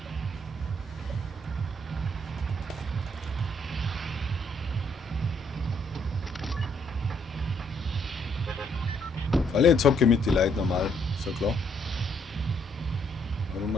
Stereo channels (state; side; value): normal; both; correlation 0.70